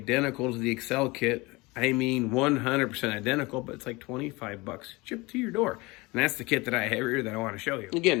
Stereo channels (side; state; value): right; quieter; 23.7 dB